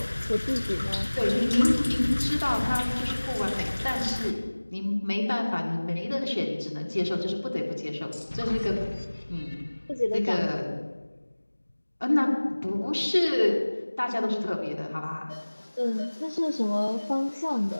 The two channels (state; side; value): inverted; both; correlation -1.00